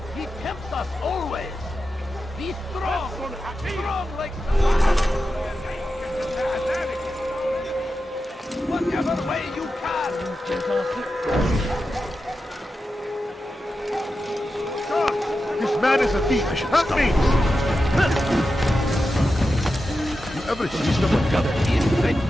He tempts us always! Be strong! Strong like whatever way you can! This man is a thief. Help me! You ever see someone gather? Great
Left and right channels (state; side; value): normal; both; correlation 0.91